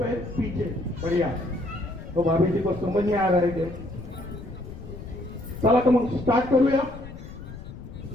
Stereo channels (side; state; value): left; noise; rumble, 13 dB below the sound